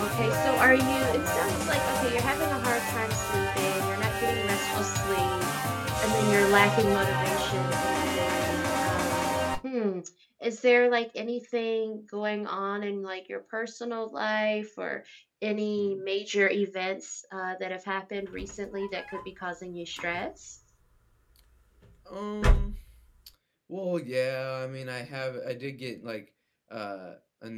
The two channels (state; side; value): identical; both; correlation 1.00